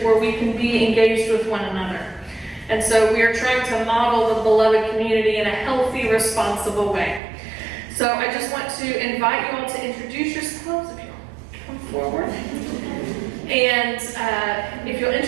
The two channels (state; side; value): drops out; left; at 7.2 s